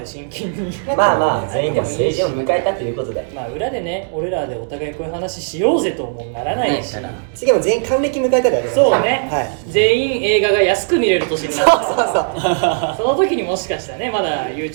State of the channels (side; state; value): left; silent; 67 dB below the other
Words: 真剣にまあまあ全員でもいいし、を迎えたということでまあ裏でね俺らでお互いこういう話しようぜともならないし、次も全員還暦迎えたりありますそうね、はい全員映画が安く見れる年になったそうそうその時にもしかしたらねまだ